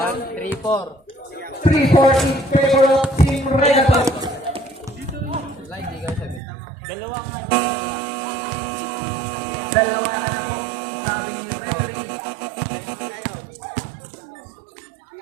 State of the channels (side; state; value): left; drops out; at 6.4 s